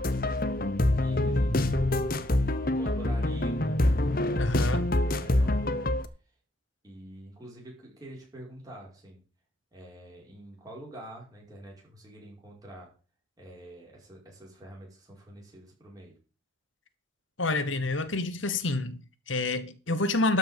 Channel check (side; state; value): both; normal; correlation 0.65